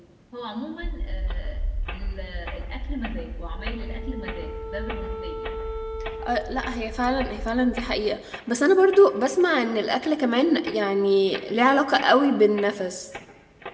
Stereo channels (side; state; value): both; identical; correlation 1.00